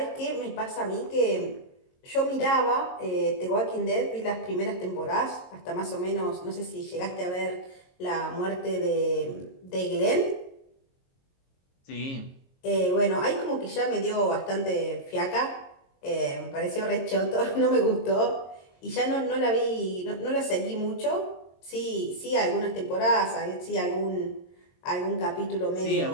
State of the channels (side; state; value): right; late; 22 ms